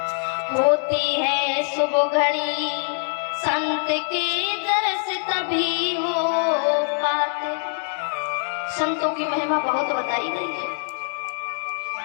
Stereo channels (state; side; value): silent; right; 63 dB below the other